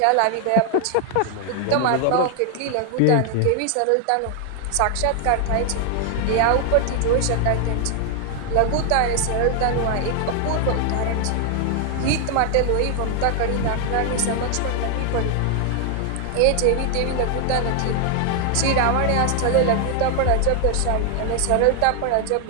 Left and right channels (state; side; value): different; both; correlation 0.00